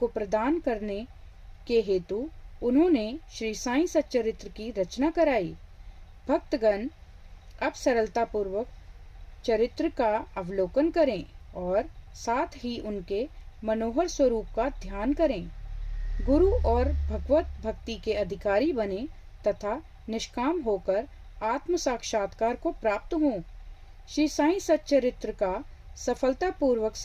प्रदान करने के हेतु उन्होंने श्री साईं सच्चरित्र की रचना कराई। भक्तगण अब सरलता पूर्वक चरित्र का अवलोकन करें और साथ ही उनके मनोहर स्वरूप का ध्यान करें। गुरु और भगवत भक्ति के अधिकारी बने तथा निष्काम होकर आत्म साक्षात्कार को प्राप्त हों। श्री साईं सच्चरित्र का सफलता पूर्वक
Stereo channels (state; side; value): identical; both; correlation 1.00